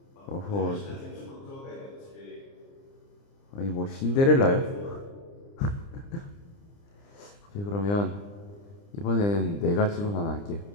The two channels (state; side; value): late; right; 30 ms